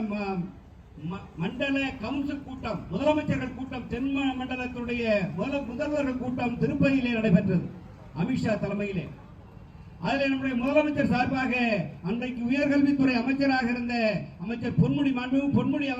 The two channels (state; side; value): identical; both; correlation 1.00